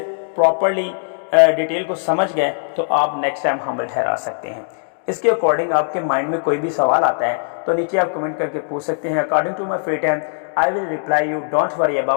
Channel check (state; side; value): silent; right; digital silence